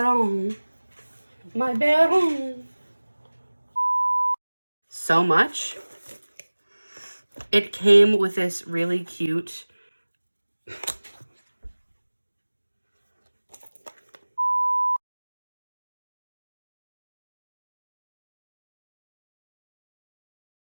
My baron. So much. It came with this really cute let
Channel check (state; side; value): inverted; both; correlation -1.00